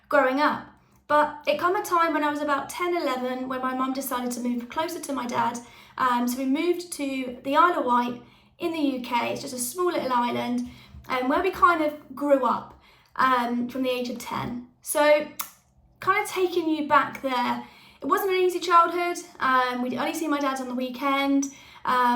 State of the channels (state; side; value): identical; both; correlation 1.00